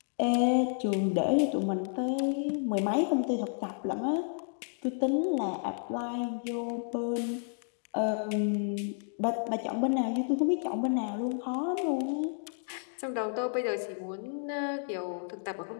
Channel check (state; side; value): silent; right; digital silence